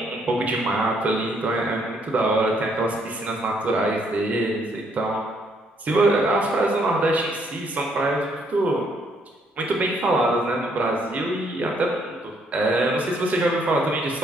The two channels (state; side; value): normal; both; correlation 0.70